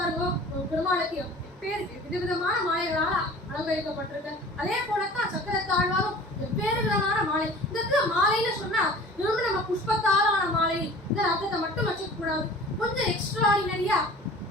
பெருமாளுக்கு பேர் விதவிதமான மாலைகளால அலங்கரிக்கப்பட்டிருக்கு. அதே போலத்தான் சக்கரத்தாழ்வாரும் வெவ்வேறு விதமான மாலை. இந்த மாலைன்னு சொன்னா வெறும் நம்ம புஷ்பத்தாலான மாலை இந்த அர்த்தத்தை மட்டும் வச்சுக்க கூடாது. கொஞ்சம் எக்ஸ்ட்ராடினரியா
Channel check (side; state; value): both; normal; correlation 0.44